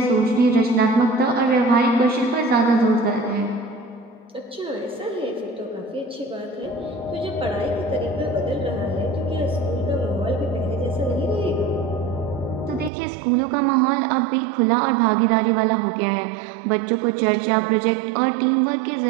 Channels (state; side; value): drops out; left; at 12.9 s